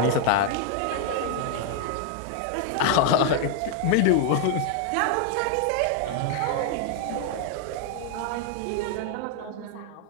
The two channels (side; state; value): both; different; correlation 0.00